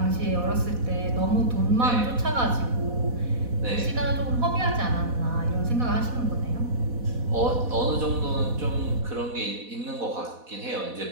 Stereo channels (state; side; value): late; left; 4.1 ms